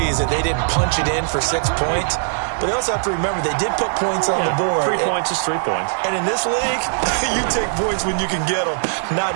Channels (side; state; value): left; silent; digital silence